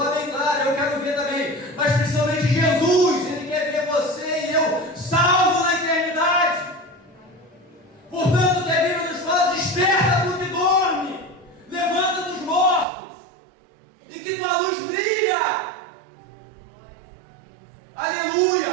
bem claro, eu quero ver também, mas principalmente Jesus, ele quer ver você e eu salvo na eternidade. Portanto, a Bíblia nos fala, desperta do que dorme, levanta dos mortos, e que tua luz brilha.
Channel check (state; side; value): drops out; left; at 12.9 s